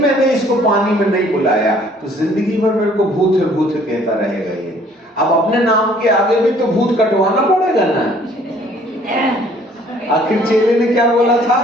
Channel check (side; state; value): both; normal; correlation 0.58